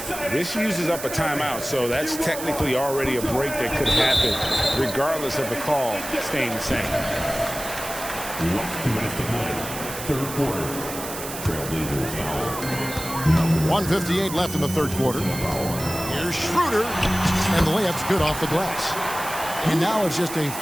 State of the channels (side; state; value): right; noise; hiss, 9 dB below the sound